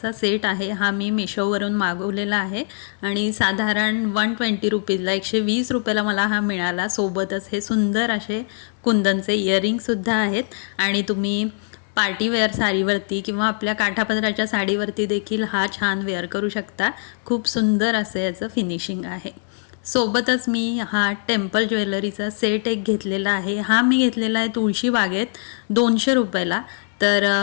सेट आहे, हा मी मिशोवरून मागवलेला आहे आणि साधारण ₹120ला ₹120ला मला हा मिळाला. सोबतच हे सुंदर असे कुंदनचे इयरिंगसुद्धा आहेत आणि तुम्ही पार्टीवेअर साडीवरती किंवा आपल्या काठापदराच्या साडीवरती देखील हा छान वेअर करू शकता. खूप सुंदर असं याचं फिनिशिंग आहे. सोबतच मी हा टेम्पल ज्वेलरीचा सेट एक घेतलेला आहे. हा मी घेतलेला आहे तुळशी बागेत ₹200ला. तर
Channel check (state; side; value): silent; right; 61 dB below the other